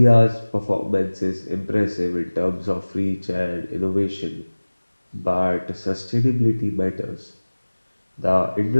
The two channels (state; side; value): inverted; both; correlation -1.00